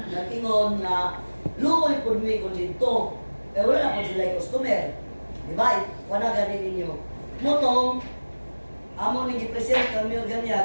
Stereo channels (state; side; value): inverted; both; correlation -1.00